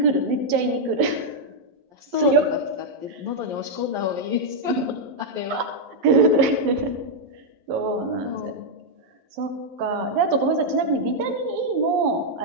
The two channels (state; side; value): late; left; 11 ms